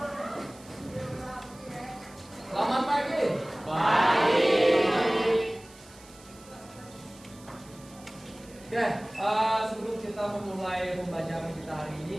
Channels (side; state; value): right; noise; hiss, 23 dB below the sound